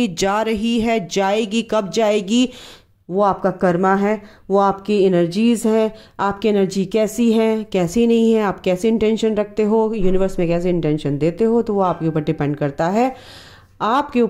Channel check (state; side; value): identical; both; correlation 1.00